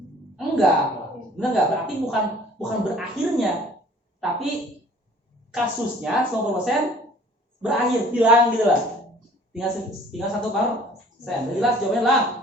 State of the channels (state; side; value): normal; both; correlation 0.53